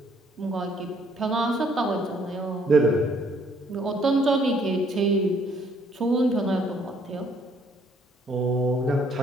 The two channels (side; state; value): both; normal; correlation 0.65